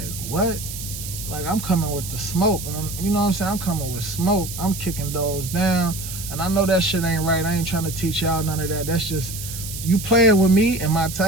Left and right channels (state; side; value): noise; right; hiss, 9 dB below the sound